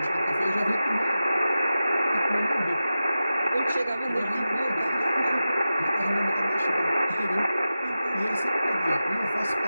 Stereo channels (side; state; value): both; inverted; correlation -0.93